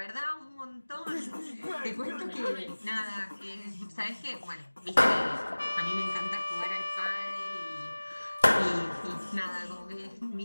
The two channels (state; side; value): inverted; both; correlation -1.00